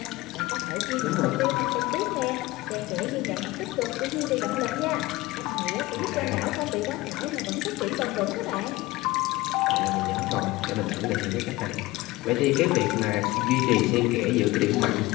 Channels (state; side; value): quieter; right; 19.5 dB